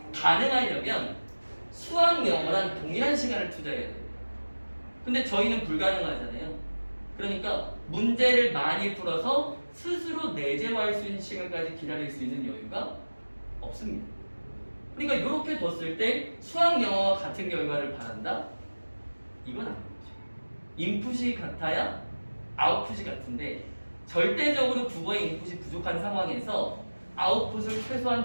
가능하려면 수학 영어랑 동일한 시간을 투자해야 돼요. 근데 저희는 불가능하잖아요. 그러니까 문제를 많이 풀어서 스스로 내재화할 수 있는 시간까지 기다릴 수 있는 여유가 없습니다. 그러니까 이렇게 뒀을 때 수학 영어와 같은 결과를 바란다? 이건 아니죠. 인풋이 같아야 아웃풋이 같은데 절대적으로 국어의 인풋이 부족한 상황에서 아웃풋을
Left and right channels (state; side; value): inverted; both; correlation -1.00